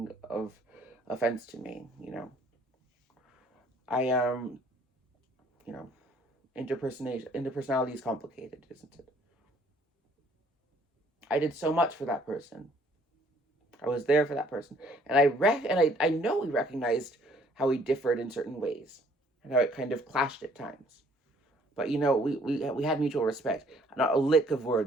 of offense to me. I interpersonality is complicated, isn't it? I did so much for that person. I was there for that person, and I know we recognized how we differed in certain ways, and how it kind of clashed at times. But we had mutual respect. Not a lick of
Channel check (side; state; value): both; normal; correlation 0.61